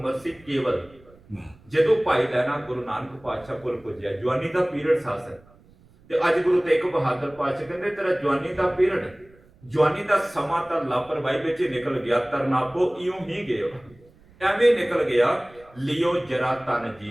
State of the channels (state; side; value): noise; right; rumble, 27 dB below the sound